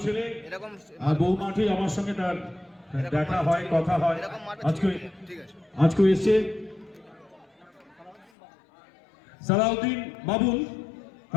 ছেলে। এরকম আর বহু মাঠে আমার সঙ্গে তার দেখা হয়, কথা হয়। আজকে এসছে সালাউদ্দিন বাবুল,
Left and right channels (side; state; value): right; drops out; at 8.3 s